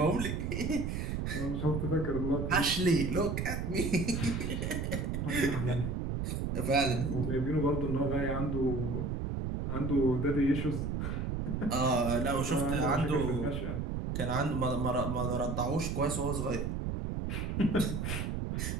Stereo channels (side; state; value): right; noise; rumble, 2 dB below the sound